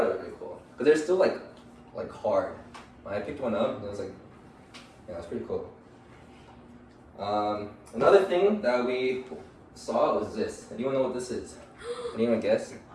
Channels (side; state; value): both; identical; correlation 1.00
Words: it was really cool because they're still like hard. I picked one up, and it was like, yeah, it's pretty cool. Another thing that we saw was this. Anyone know what this is? Anyone guess?